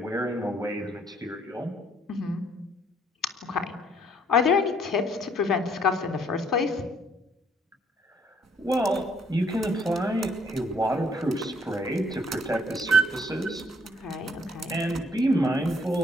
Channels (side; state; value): both; normal; correlation 0.65